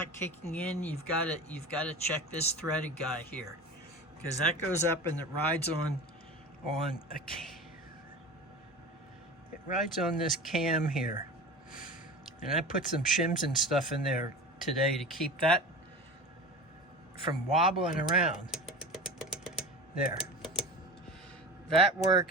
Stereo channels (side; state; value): both; normal; correlation 0.33